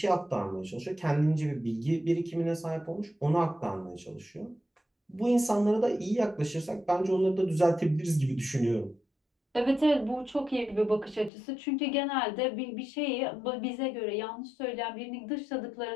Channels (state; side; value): drops out; right; at 11.3 s